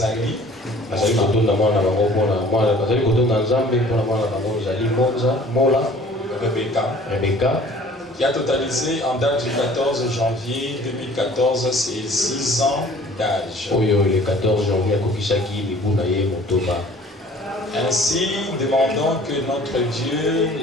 Rebecca. Qui a totalisé en date du 14 janvier 2014 ses 6 ans d'âge. Ainsi, demandons que notre Dieu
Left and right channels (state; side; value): normal; both; correlation 0.51